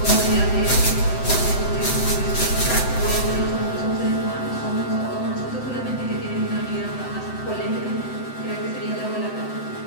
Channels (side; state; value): right; late; 7.9 ms